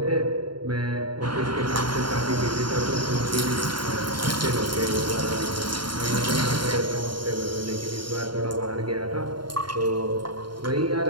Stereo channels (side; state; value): left; late; 0.72 ms